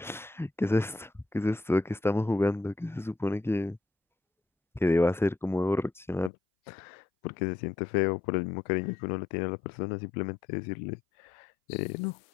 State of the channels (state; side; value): drops out; right; at 6.3 s